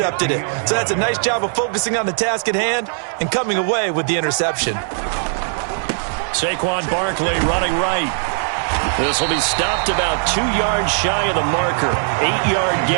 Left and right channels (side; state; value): left; silent; digital silence